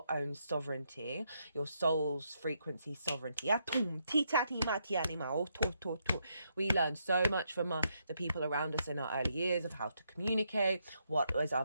own sovereignty, your soul's frequency sovereignty. We learn so much from the people around us in our early years of how to communicate, what is our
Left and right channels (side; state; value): both; inverted; correlation -0.78